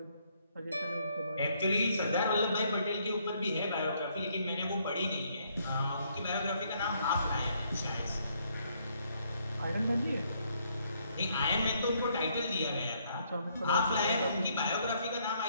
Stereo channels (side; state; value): both; inverted; correlation -0.70